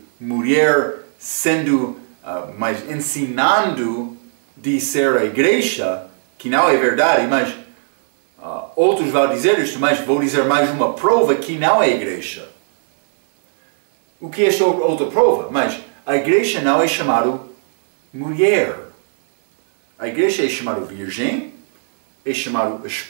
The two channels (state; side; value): silent; left; 62 dB below the other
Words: mulher sendo, mas ensinando de ser a igreja, que não é verdade, mas outros vão dizer isto, mas vou dizer mais uma prova que não é a igreja. O que é esta outra prova? Mas a igreja não é chamada mulher. A igreja é chamada virgem, é chamada